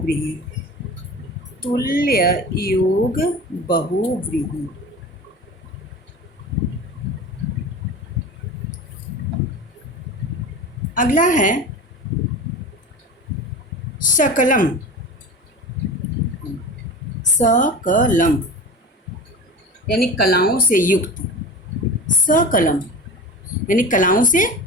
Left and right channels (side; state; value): both; normal; correlation 0.33